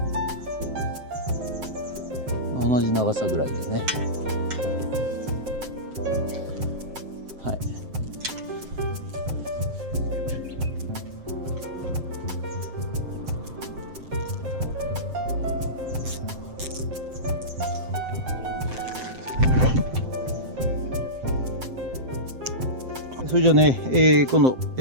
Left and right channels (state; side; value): late; left; 7.7 ms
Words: 同じ長さぐらいでね。はい。それじゃあね、この